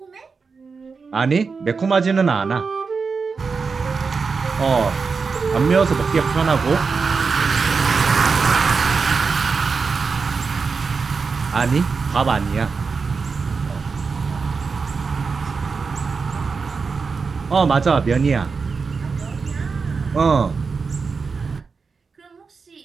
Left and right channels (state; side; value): quieter; left; 4.9 dB